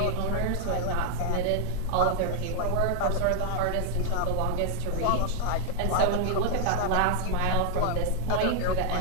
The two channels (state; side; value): different; both; correlation 0.00